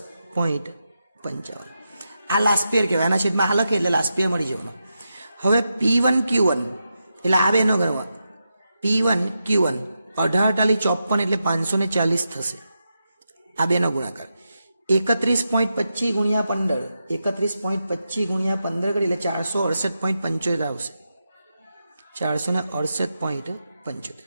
આ લાસ્ટ પેયર કહેવાય. આના છેદમાં આ લખે એટલે લાસ્ટ પેયર મળી જવાનું. હવે P1 Q1 એટલે આ બેનો ગણવા. P1 Q1 18 54 એટલે 540 થશે. આ બેનો ગુણાકાર 31.25 ગુણ્યા 15 31.25 ગુણ્યા 15 કરી એટલે 468.75 આવશે. 468.75.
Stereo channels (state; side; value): inverted; both; correlation -0.88